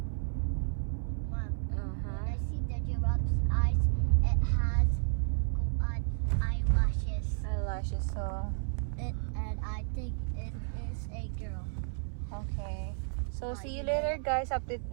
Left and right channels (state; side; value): silent; left; 56 dB below the other